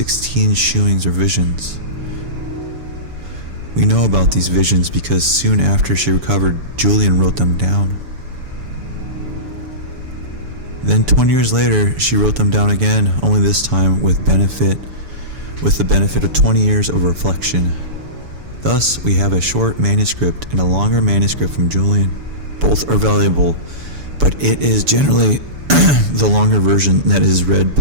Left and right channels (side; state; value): left; late; 7.0 ms